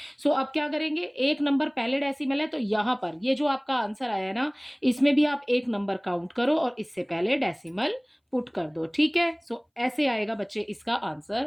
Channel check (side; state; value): both; identical; correlation 1.00